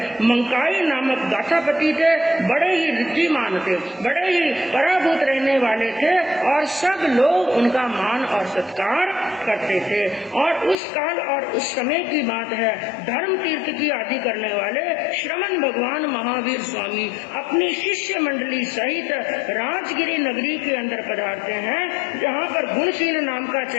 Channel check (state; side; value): drops out; right; at 10.8 s